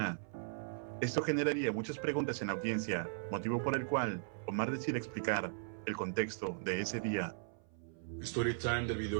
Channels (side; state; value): left; silent; 53 dB below the other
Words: Esto generaría muchas preguntas en la audiencia, motivo por el cual Omar decide explicar el contexto de ese día. Story time del